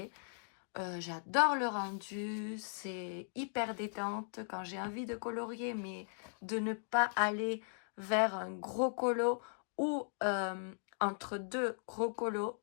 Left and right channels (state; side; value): silent; right; digital silence